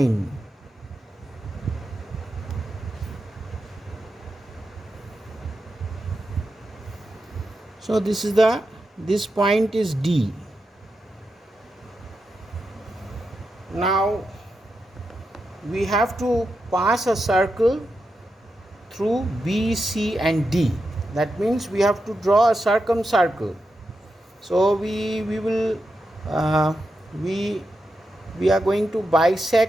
So this point is D. Now we have to pass a circle through B, C and D. That means we have to draw a circumcircle. So we are going to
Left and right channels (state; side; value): normal; both; correlation 0.87